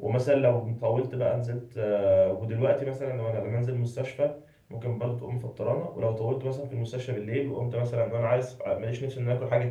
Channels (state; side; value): identical; both; correlation 1.00